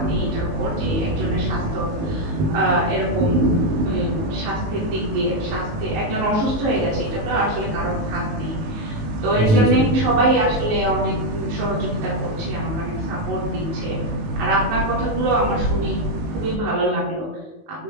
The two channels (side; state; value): left; late; 19 ms